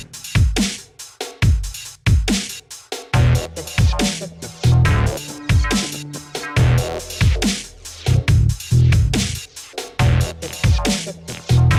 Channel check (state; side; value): identical; both; correlation 1.00